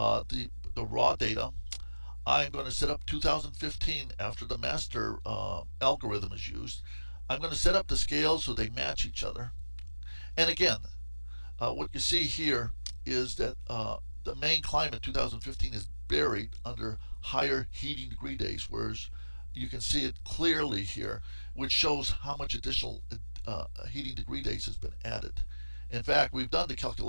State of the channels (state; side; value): inverted; both; correlation -1.00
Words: raw data. I'm going to set up 2015 after the master algorithm is used. I'm going to set up the scales so they match each other. And again, what you see here is that the Maine climate 2015 is buried under higher heating degree days, whereas you can see it clearly here, which shows how much additional heating degree days has been added. In fact, we've done the